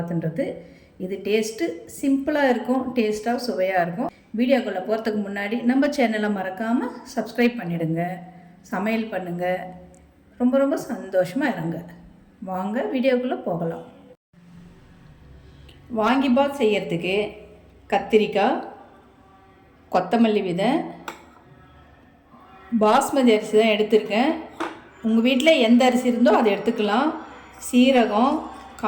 இது டேஸ்ட்டு சிம்பிளாக இருக்கும், டேஸ்ட்டாக சுவையாக இருக்கும். வீடியோக்குள்ளே போகிறதுக்கு முன்னாடி நம்ம சேனலை மறக்காமல் சப்ஸ்கிரைப் பண்ணிவிடுங்க, சமையல் பண்ணுங்கள், ரொம்ப ரொம்ப சந்தோஷமாக இருங்க. வாங்க வீடியோக்குள்ளே போகலாம். வாங்கி பாத் செய்யறதுக்கு கத்திரிக்காய், கொத்தமல்லி விதை, பாஸ்மதி அரிசி தான் எடுத்திருக்கேன். உங்கள் வீட்டில் எந்த அரிசி இருந்தோ அதை எடுத்துக்கலாம். சீரகம்,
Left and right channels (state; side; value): identical; both; correlation 1.00